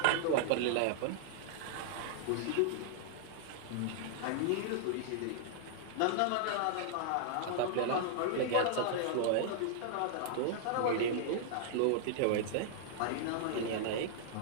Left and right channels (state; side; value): different; both; correlation -0.01